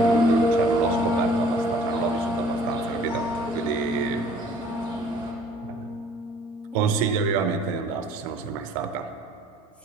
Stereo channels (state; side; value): normal; both; correlation 0.55